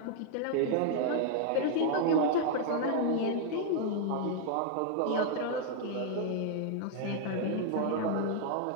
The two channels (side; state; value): both; different; correlation 0.00